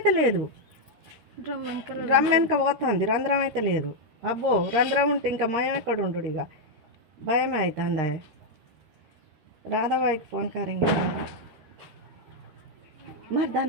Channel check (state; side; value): late; left; 13 ms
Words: లేదు. డ్రమ్ వెనక పోతుంది, రంధ్రం అయితే లేదు. అబ్బో, రంధ్రం ఉంటే ఇంకా మయం ఎక్కడ ఉండు. ఇక భయమే అవుతుంది. రాధాబాయికి ఫోన్ కారింగ్. మరి